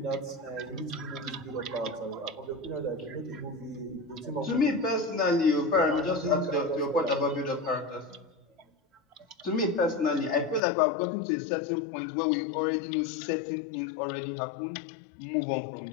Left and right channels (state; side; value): drops out; right; at 10.6 s